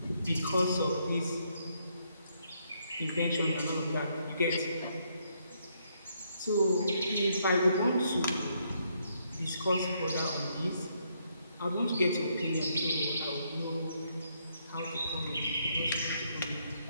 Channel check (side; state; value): both; inverted; correlation -0.74